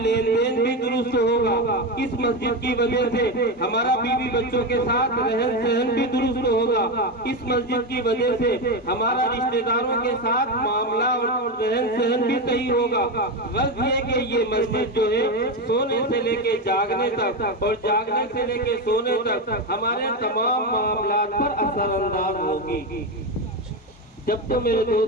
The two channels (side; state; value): both; normal; correlation 0.14